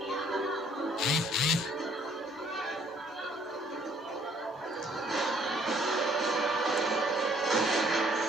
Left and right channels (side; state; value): both; normal; correlation 0.62